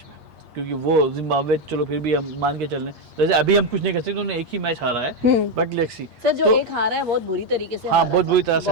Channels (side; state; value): left; late; 8.5 ms